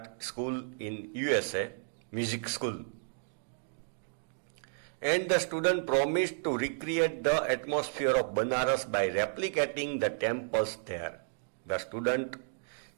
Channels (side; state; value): left; silent; digital silence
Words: school in USA, music school. And the student promised to recreate the atmosphere of Banaras by replicating the temples there. The student